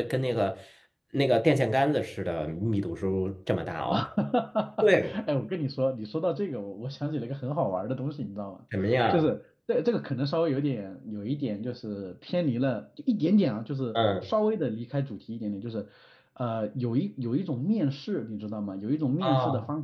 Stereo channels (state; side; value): identical; both; correlation 1.00